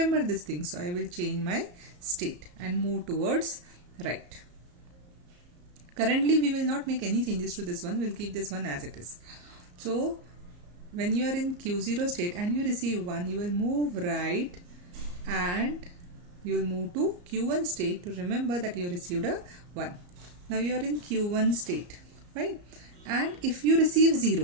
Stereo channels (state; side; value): late; left; 34 ms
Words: this thing. So I will change my state and move towards right. Currently we will not make any changes to this one, we'll keep this one as it is. So when you are in Q0 state and you receive 1, you will move right and you will move to Q1 state to remember that you received a 1. Now you are in Q1 state, right? And if you receive